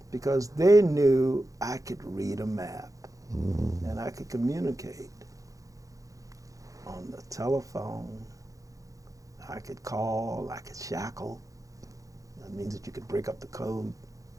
because they knew I could read a map and I could communicate on the telephone. I could call, I could shackle. That means that you could break up the code.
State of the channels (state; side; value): late; left; 0.16 ms